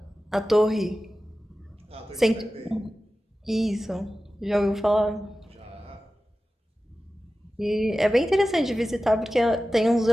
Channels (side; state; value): both; normal; correlation 0.95